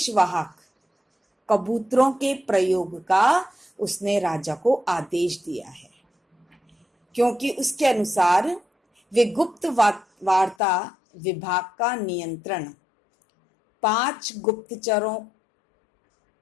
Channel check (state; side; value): drops out; right; at 10.6 s